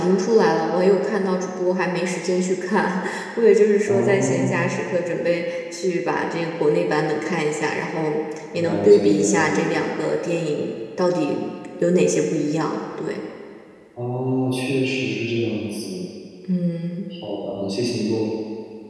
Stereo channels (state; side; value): identical; both; correlation 1.00